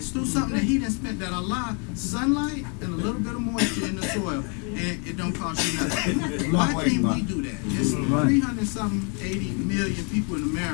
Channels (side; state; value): right; quieter; 36.7 dB